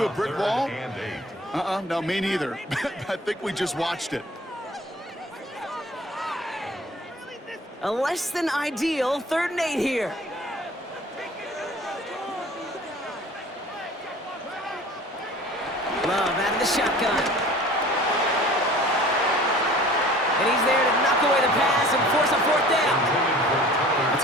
a brick wall? No, me neither. I think we just watched it. A less than ideal 3rd and 8 here. Love out of the shotgun. And he's there to knock away the pass and force a 4th down. I'll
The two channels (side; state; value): both; normal; correlation 0.47